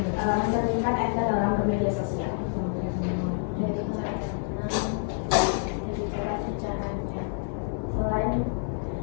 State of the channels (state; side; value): silent; right; 60 dB below the other